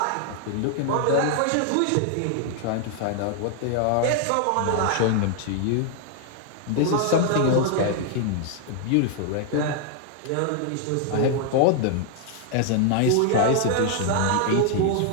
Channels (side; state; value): both; different; correlation 0.00